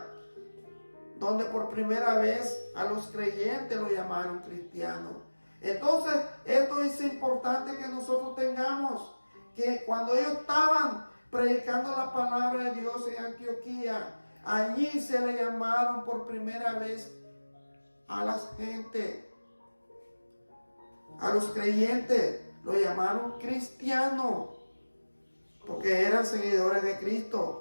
donde por primera vez a los creyentes lo llamaron cristianos. Entonces, esto es importante que nosotros tengamos, que cuando ellos estaban predicando la palabra de Dios en Antioquía, allí se le llamaron por primera vez a la gente, a los creyentes, lo llamaron cristianos, porque eran seguidores de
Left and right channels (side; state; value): both; inverted; correlation -1.00